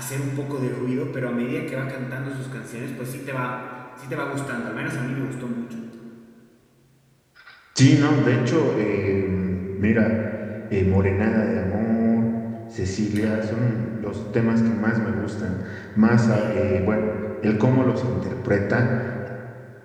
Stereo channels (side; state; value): both; identical; correlation 1.00